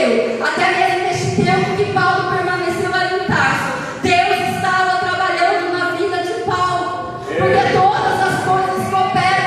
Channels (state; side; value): identical; both; correlation 1.00